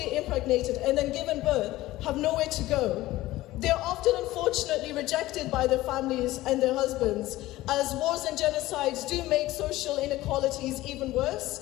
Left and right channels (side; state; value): right; quieter; 17.0 dB